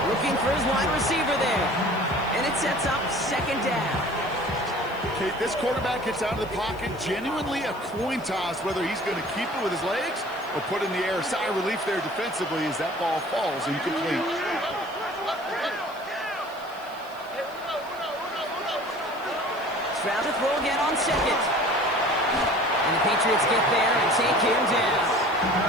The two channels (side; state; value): left; noise; hiss, 25 dB below the sound